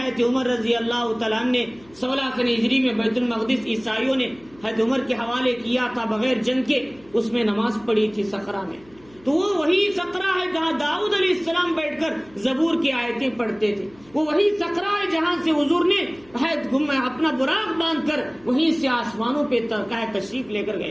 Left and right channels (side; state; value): left; noise; hum, 27 dB below the sound